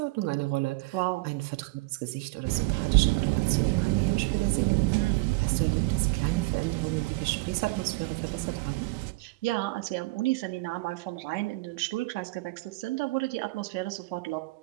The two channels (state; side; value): quieter; left; 23.6 dB